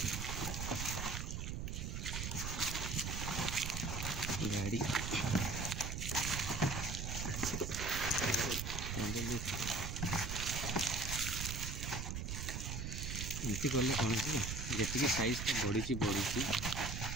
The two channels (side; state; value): right; noise; rumble, 3 dB below the sound